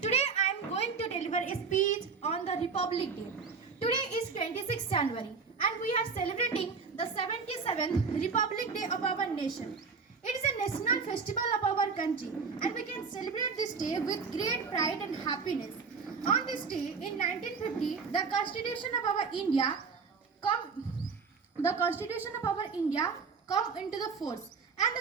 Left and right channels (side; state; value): left; quieter; 5.2 dB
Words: Today I am going to deliver a speech on the Republic Day. Today is 26th January and we are celebrating the 77th Republic Day of our nation. It is a national festival of our country and we can celebrate this day with great pride and happiness. On this day in 1950, the Constitution of our India come into the force, and